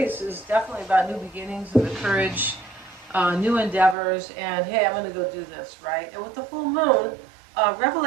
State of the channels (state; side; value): drops out; left; at 4.0 s